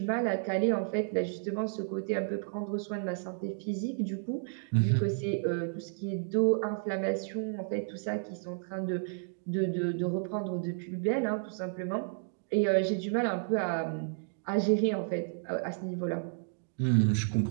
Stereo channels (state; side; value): silent; left; digital silence